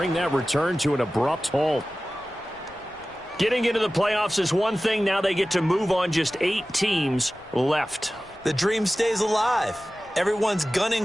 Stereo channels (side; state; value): left; noise; rumble, 27 dB below the sound